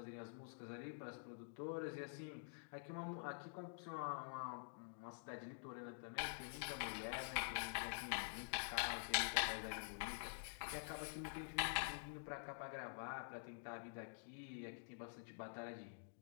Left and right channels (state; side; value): silent; right; digital silence